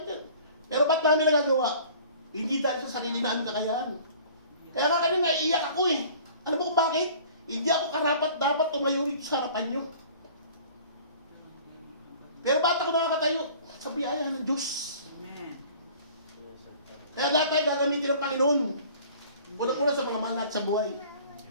yan. Pero ba't namin nagagawa? Hindi dahil sa sarili namin kakayahan. Kaya nga kanina, naiiyak ako eh. Alam mo kung bakit? Hindi ako karapat dapat tumayo rito sa harapan nyo. Pero ba't ako nakakatayo? Sa biyaya ng Diyos. Amen. Kaya lahat tayo gagamitin ng Panginoon. Unang-una sa mga manat sa buhay.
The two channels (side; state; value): both; inverted; correlation -0.48